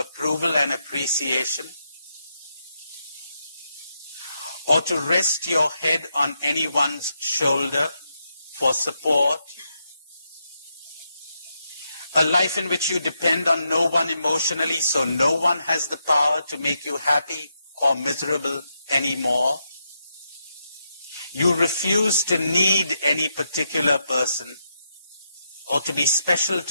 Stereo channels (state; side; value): inverted; both; correlation -0.82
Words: and appreciation? Or to rest your head on anyone's shoulder for support? A life in which you depend on no one emotionally, so no one has the power to make you happy or miserable anymore. You refuse to need any particular person or to be special